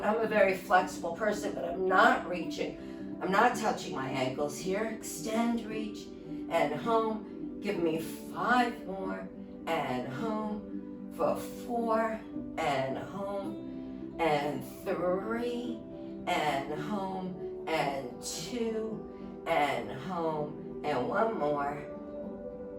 I'm a very flexible person, but I'm not reaching. I'm not touching my ankles here. Extend, reach, and home. Give me 5 more, and home for 4, and home, and 3, and home, and 2, and home, and 1 more.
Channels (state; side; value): identical; both; correlation 1.00